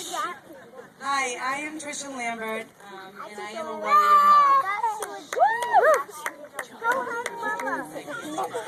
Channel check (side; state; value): both; identical; correlation 1.00